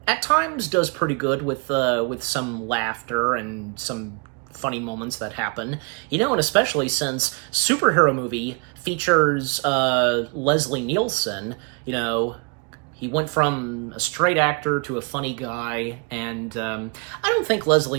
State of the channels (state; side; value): quieter; left; 34.1 dB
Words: at times does pretty good with some laughter and some funny moments that happen, and especially since superhero movie features Leslie Nielsen, he went from a straight actor to a funny guy, and I don't think